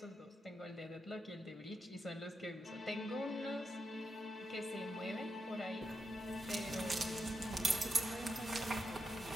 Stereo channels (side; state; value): both; normal; correlation 0.85